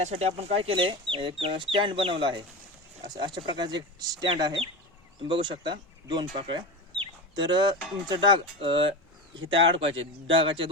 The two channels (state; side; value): normal; both; correlation 0.24